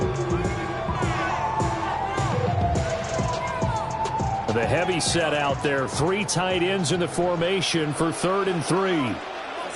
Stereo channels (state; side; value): identical; both; correlation 1.00